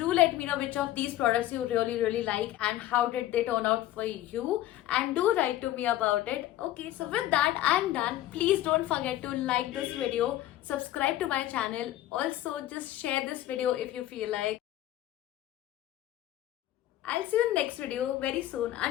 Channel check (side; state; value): right; quieter; 14.1 dB